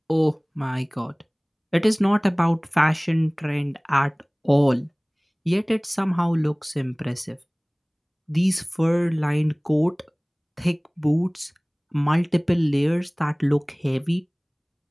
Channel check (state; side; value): identical; both; correlation 1.00